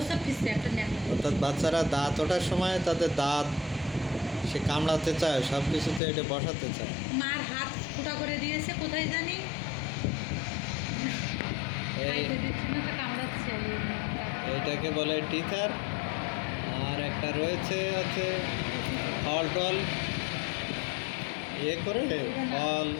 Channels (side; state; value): right; drops out; at 6.0 s